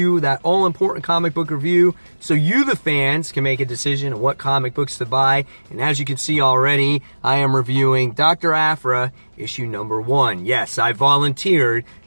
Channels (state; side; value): inverted; both; correlation -1.00